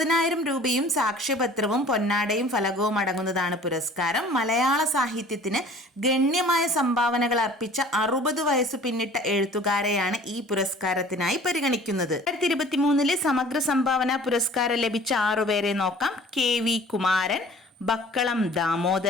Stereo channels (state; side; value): normal; both; correlation 0.48